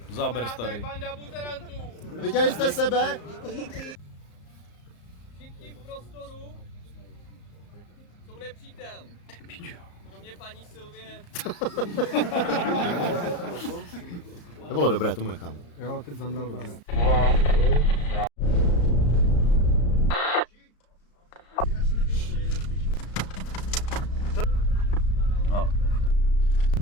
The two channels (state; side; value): late; right; 34 ms